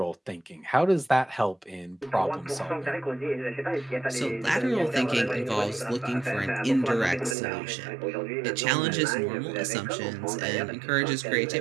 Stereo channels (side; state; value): left; drops out; at 7.4 s